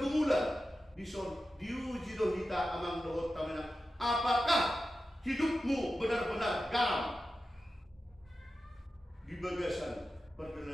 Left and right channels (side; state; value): both; normal; correlation 0.92